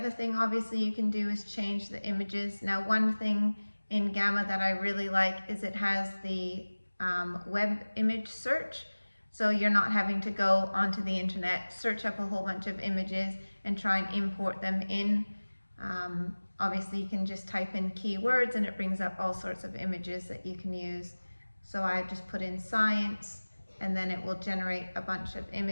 thing obviously you can do is change the images. Now one thing in Gamma that I really like is it has the web image search. So you're not having to go onto the internet, search up a whole bunch of images and try and import them in. Obviously you can just type in keywords and it brings up all sorts of images that you can use. So I just put in science and then it will generate a bunch of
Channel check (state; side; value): inverted; both; correlation -1.00